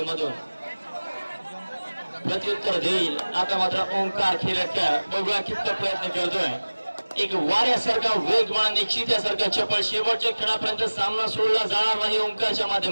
प्रत्युत्तर देईल आता मात्र ओंकार खिरटकर. बघूया किती प्रयत्न करतोय. एक वाऱ्यासारखा वेगवान एक चित्यासारखा चपळ शेवटच्या खेळापर्यंत सामना सोडला जाणार नाही. ओंकारच्या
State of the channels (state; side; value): inverted; both; correlation -1.00